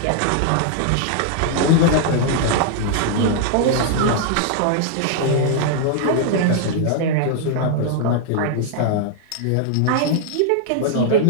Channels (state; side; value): different; both; correlation -0.01